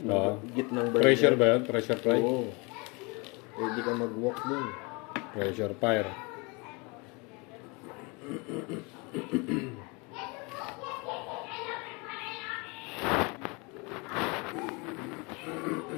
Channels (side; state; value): right; quieter; 28.9 dB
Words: burger. Pressure ba yun? Pressure fry? Oo. Pwede kang mag-walk dun. Pressure fire.